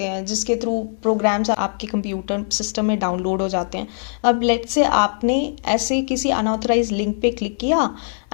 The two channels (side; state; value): right; silent; 62 dB below the other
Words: हैं जिसके थ्रू प्रोग्राम्स आपके कंप्यूटर सिस्टम में डाउनलोड हो जाते हैं. अब लेट्स से आपने ऐसे किसी अनऑथराइज्ड लिंक पे क्लिक किया